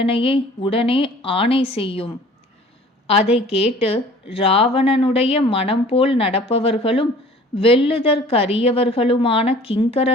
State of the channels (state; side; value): normal; both; correlation 0.49